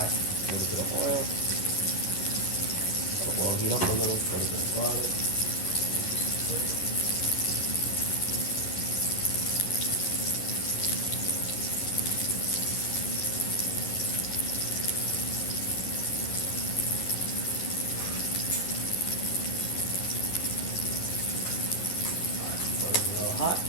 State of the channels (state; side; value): late; right; 11 ms